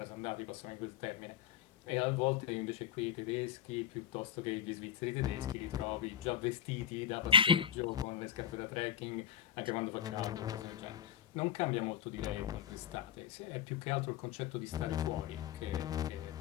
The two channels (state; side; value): quieter; right; 9.3 dB